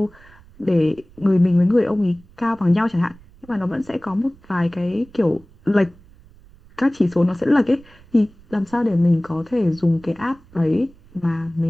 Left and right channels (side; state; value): right; noise; rumble, 26 dB below the sound